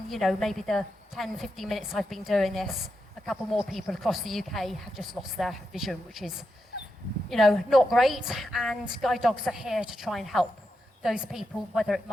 maybe the 10, 15 minutes I've been doing this, a couple more people across the UK have just lost their vision, which is, not great, and guide dogs are here to try and help those people, whether it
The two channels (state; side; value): normal; both; correlation 0.86